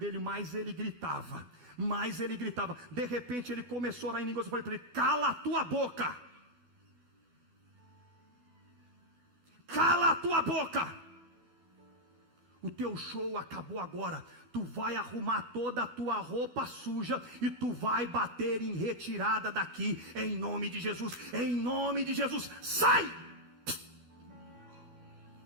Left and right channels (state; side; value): late; left; 12 ms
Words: mais ele gritava. De repente ele começou a orar em línguas. Eu falei para ele: cala a tua boca! Cala a tua boca! o teu show acabou agora. Tu vai arrumar toda a tua roupa suja e tu vai bater em retirada daqui, em nome de Jesus, em nome de Jesus, sai!